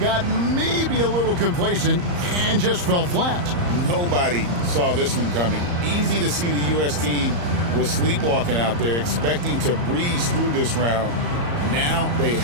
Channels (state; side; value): late; left; 34 ms